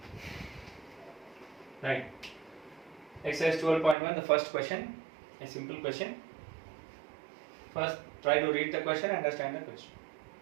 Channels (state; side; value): drops out; left; at 4.0 s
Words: Right. Exercise 12.1, the first question, a simple question. First, try to read the question, understand the question.